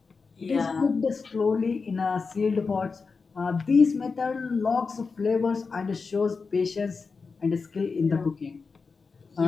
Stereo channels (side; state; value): right; quieter; 4.7 dB